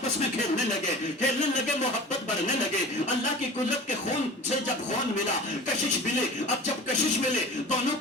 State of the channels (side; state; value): both; normal; correlation 0.39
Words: میں کھیلنے لگے، محبت بڑھنے لگے۔ اللہ کی قدرت کے خون سے جب خون ملا، کشش ملے، اب جب کشش ملے دونوں